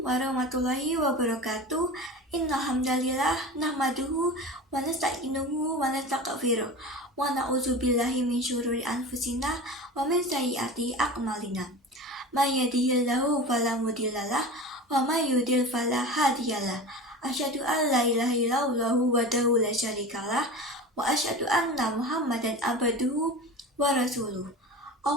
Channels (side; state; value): both; normal; correlation 0.32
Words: wabarakatuh. Innal hamdalillah nahmaduhu wa nasta'inuhu wa nastaghfiruh wa na'udzubillahi min syururi anfusina wa min sayyiati a'malina. May yahdihillahu fala mudhillalah wa may yudhlil fala hadiyalah. Asyhadu an la ilaha illallah wahdahu la syarikalah wa asyhadu anna Muhammadan abduhu wa rasuluh.